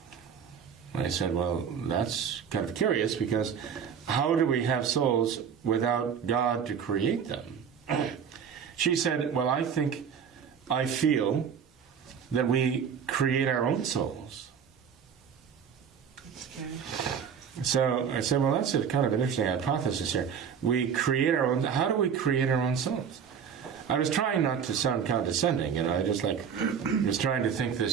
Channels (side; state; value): left; quieter; 7.3 dB